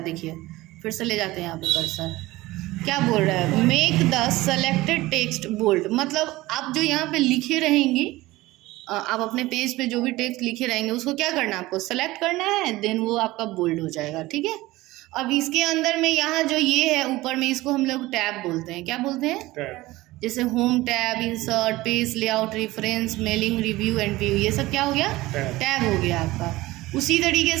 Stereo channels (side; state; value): left; quieter; 18.8 dB